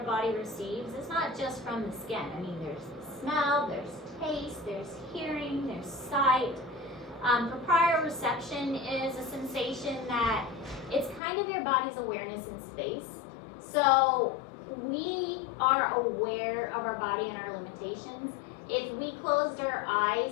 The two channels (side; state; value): right; drops out; at 11.2 s